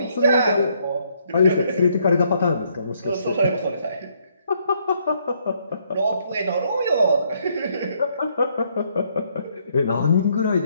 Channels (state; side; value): inverted; both; correlation -0.71